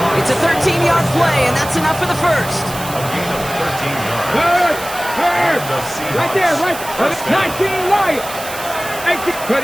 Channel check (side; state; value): right; noise; hiss, 12 dB below the sound